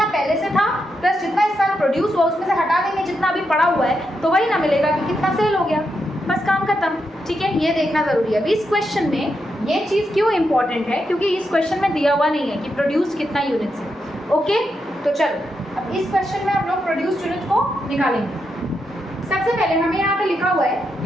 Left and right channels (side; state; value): both; normal; correlation 0.84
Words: पहले से था प्लस जितना इस साल प्रोड्यूस हुआ उसमें से हटा देंगे जितना अभी पड़ा हुआ है तो वही ना मिलेगा कि कितना सेल हो गया, बस काम खत्म, ठीक है। ये देखना जरूरी है। अभी इस क्वेश्चन में ये चीज़ क्यों इंपॉर्टेंट है, क्योंकि इस क्वेश्चन में दिया हुआ नहीं है कि प्रोड्यूस कितना यूनिट्स है। ओके, तो चलो अब इस क्वेश्चन में हम लोग प्रोड्यूस यूनिट्स को निकालेंगे। सबसे पहले हमें यहाँ पे लिखा हुआ है कि